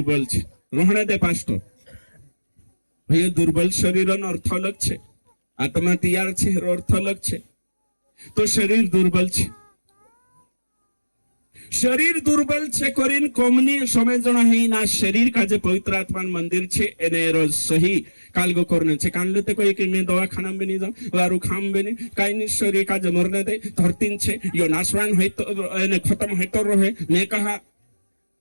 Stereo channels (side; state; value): both; inverted; correlation -1.00